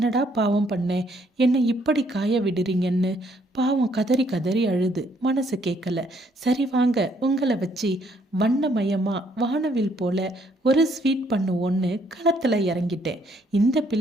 பாவம் பண்ணேன், என்னை இப்படி காய விடுறீங்கன்னு பாவம் கதறி கதறி அழுது மனசு கேட்கல. சரி வாங்க, உங்களை வச்சு வண்ணமயமாக வானவில் போல ஒரு ஸ்வீட் பண்ணுவோன்னு களத்தில் இறங்கிட்டேன். இந்த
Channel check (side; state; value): both; normal; correlation 0.68